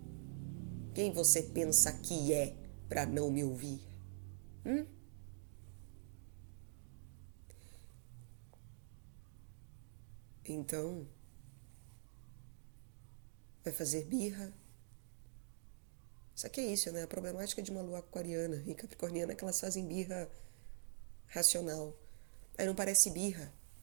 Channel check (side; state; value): left; silent; digital silence